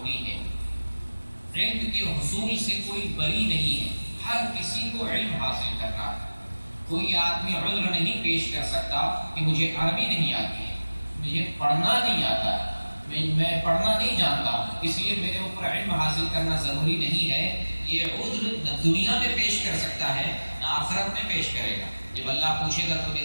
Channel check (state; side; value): inverted; both; correlation -1.00